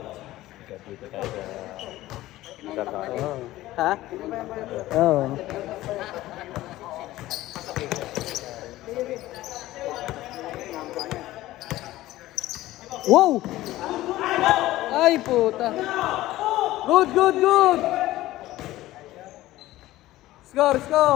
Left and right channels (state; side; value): quieter; right; 16.2 dB